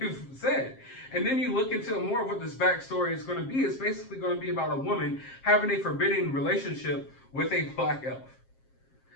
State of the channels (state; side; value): late; right; 7.5 ms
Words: said. And then you look into more of what this backstory is going to be. It's basically going to be about a woman having a forbidden relationship with a black elf.